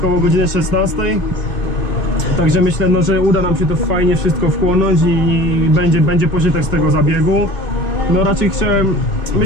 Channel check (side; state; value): right; late; 2.5 ms